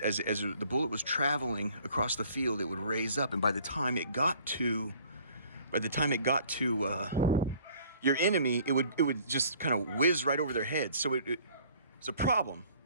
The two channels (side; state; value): both; inverted; correlation -0.55